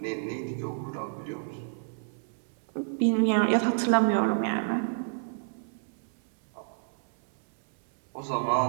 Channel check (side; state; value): left; silent; 58 dB below the other